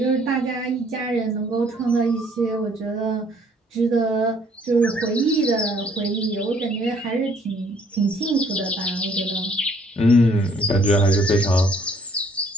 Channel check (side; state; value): both; normal; correlation 0.62